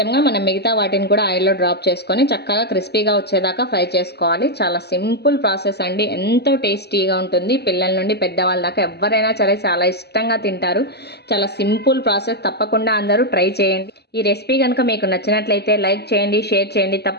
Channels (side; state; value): right; late; 0.48 ms